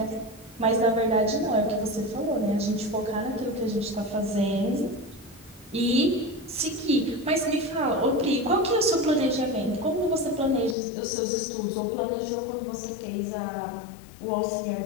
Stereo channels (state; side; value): drops out; right; at 10.8 s